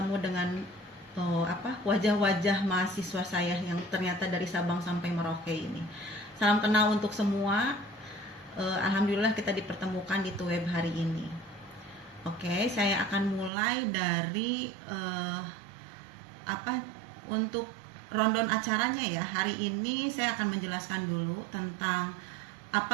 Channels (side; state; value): left; drops out; at 13.5 s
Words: dengan wajah-wajah mahasiswa saya yang ternyata dari Sabang sampai Merauke ini. Salam kenal untuk semua. Alhamdulillah kita dipertemukan di Tuweb hari ini. Oke, saya akan mulai dari untuk rundown acaranya ya. Hari ini saya akan menjelaskan dulu tentang